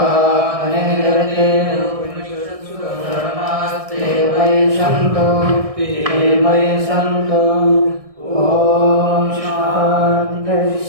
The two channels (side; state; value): left; late; 1.6 ms